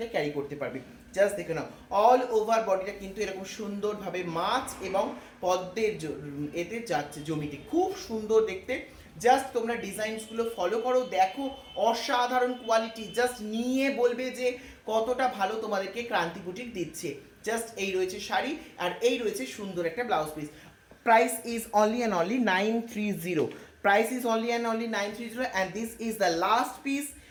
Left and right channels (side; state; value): both; identical; correlation 1.00